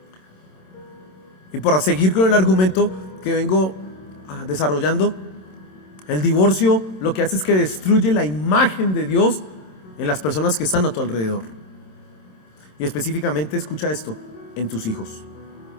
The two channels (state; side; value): late; right; 27 ms